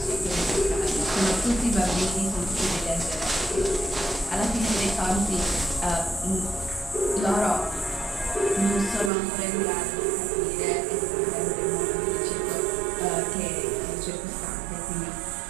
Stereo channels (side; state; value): left; drops out; at 9.1 s